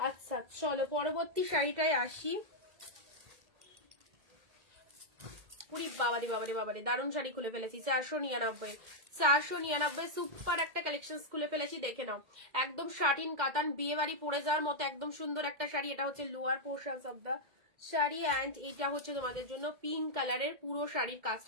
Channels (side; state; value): left; late; 2.1 ms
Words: চলো পরবর্তী শাড়িটায় আসি। উরি বাবারে বাবারে বাবারে, দারুণ শাড়ি খুলে ফেলেছি। 499 সুপার একটা কালেকশন খুলে ফেলেছি, দেখে নাও। একদম শাটিন কাতান বিয়ে বাড়ি পরে যাওয়ার মতো একদম সুন্দর একটা শাড়ি। এটা হচ্ছে lower portion of the sari and এটা হচ্ছে তোমাদের জন্য পিঙ্ক কালারের। পুরো শাড়ির